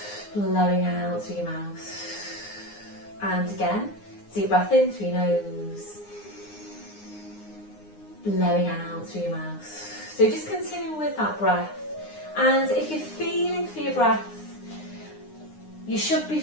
blowing out through your mouth. And again, deep breath in through your nose, blowing out through your mouth. So just continue with that breath. And if you're feeling for your breath, you should be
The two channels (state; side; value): late; right; 9.7 ms